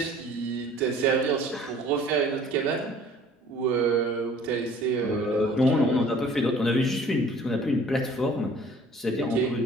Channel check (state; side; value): normal; both; correlation 0.52